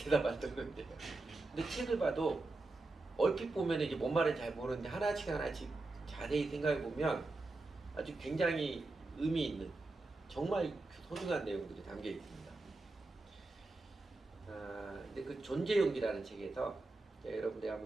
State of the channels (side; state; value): left; quieter; 3.2 dB